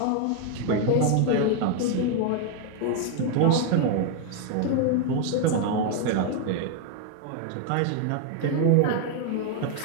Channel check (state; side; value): different; both; correlation 0.00